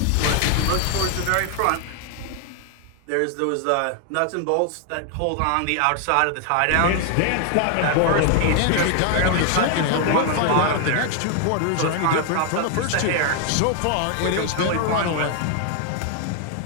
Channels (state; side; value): different; both; correlation 0.00